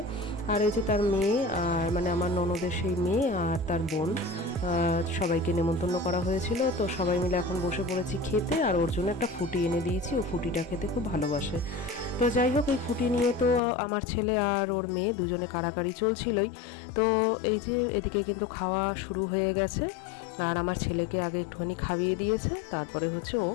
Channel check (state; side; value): drops out; right; at 13.6 s